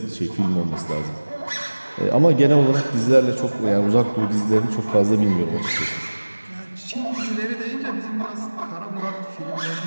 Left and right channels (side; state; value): both; inverted; correlation -1.00